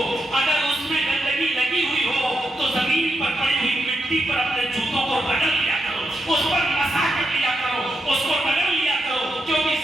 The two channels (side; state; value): both; normal; correlation 0.84